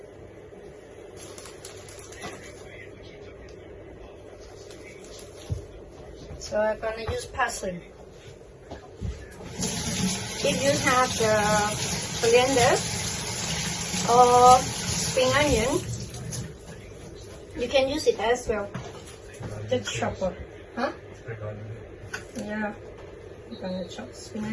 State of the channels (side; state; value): both; identical; correlation 1.00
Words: So I'm gonna use parsley. If you have the coriander or spring onion, you can use it as well. The chopper, huh? Yeah, I'm gonna chop spring